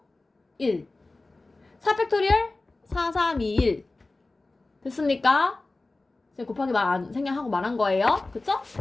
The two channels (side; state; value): right; quieter; 3.2 dB